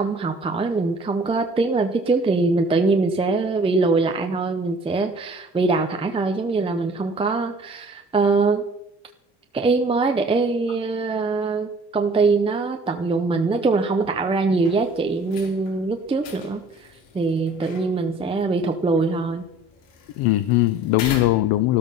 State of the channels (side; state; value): both; normal; correlation 0.50